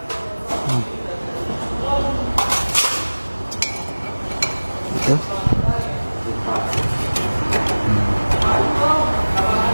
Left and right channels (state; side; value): inverted; both; correlation -1.00